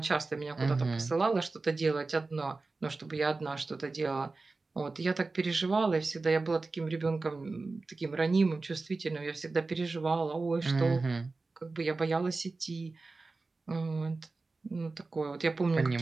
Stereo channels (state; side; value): quieter; left; 3.7 dB